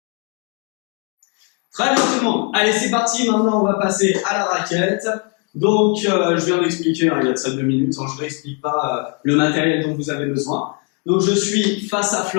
Très bien tout le monde. Allez, c'est parti. Maintenant, on va passer à la raquette. Donc, je viens d'expliquer, hein, il y a de ça 2 minutes. Hein, je ne réexplique pas le matériel dont vous avez besoin. Donc, je suis face à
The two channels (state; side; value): quieter; right; 35.0 dB